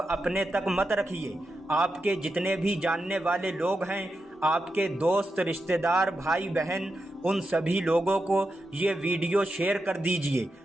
اپنے تک مت رکھیے، آپ کے جتنے بھی جاننے والے لوگ ہیں، آپ کے دوست، رشتہ دار، بھائی بہن، ان سبھی لوگوں کو یہ ویڈیو شیئر کر دیجئے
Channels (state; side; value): normal; both; correlation 0.88